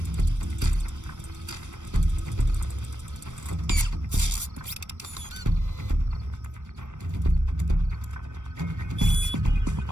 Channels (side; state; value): left; late; 0.85 ms